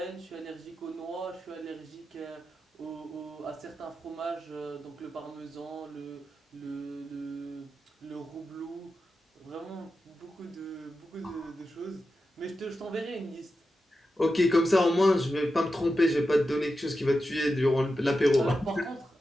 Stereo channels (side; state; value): both; normal; correlation 0.90